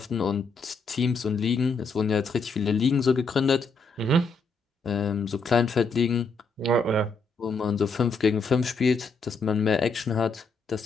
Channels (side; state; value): right; quieter; 3.9 dB